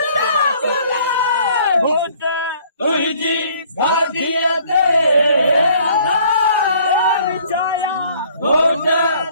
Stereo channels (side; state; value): both; inverted; correlation -0.58